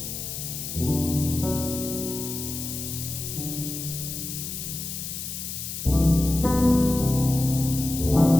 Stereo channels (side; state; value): left; noise; hiss, 6 dB below the sound